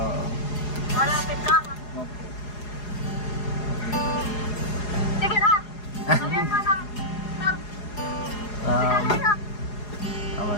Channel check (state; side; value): late; right; 4.8 ms